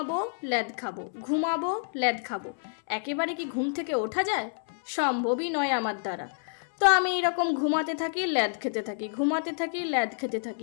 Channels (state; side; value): silent; right; 59 dB below the other